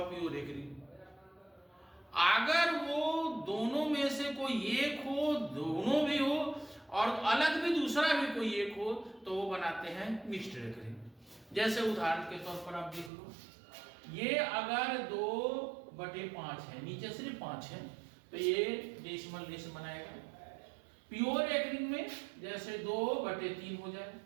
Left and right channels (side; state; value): left; drops out; at 13.1 s